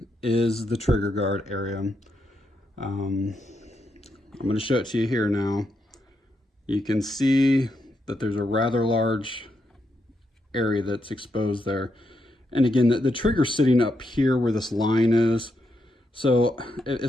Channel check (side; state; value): both; normal; correlation 0.82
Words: is the trigger guard area. I'm going to show it to you here now. You can see that there's a rather large area that's exposed there. And again, the trigger's sitting up here where this line is. So